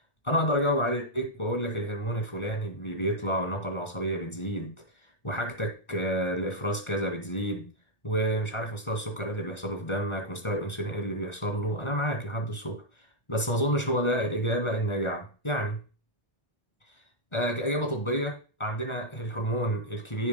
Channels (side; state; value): right; late; 1.4 ms